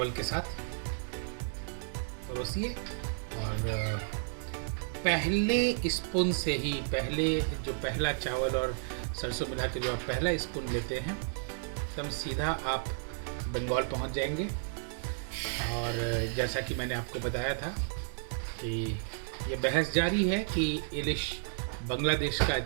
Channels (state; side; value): silent; left; digital silence